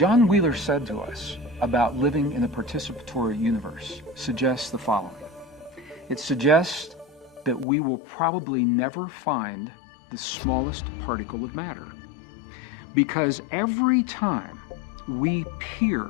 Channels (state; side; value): drops out; right; at 7.7 s